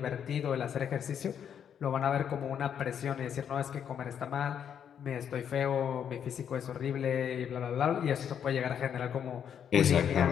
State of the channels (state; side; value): quieter; right; 8.5 dB